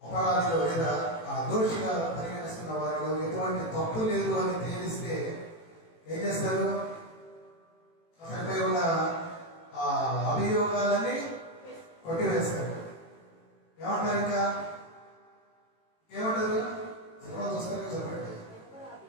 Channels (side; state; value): right; late; 18 ms